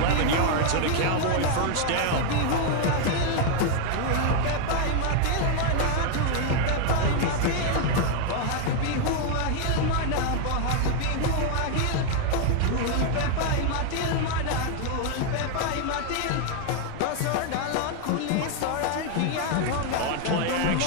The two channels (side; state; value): both; different; correlation 0.01